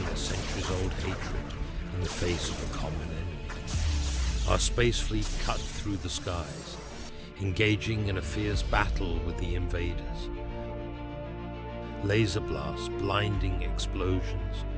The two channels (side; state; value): both; identical; correlation 1.00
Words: centuries-old hatred in the face of a common enemy. Our space fleet cut through the skies, engaging in a fierce battle with the invaders. Laser blasts, blinding explosions,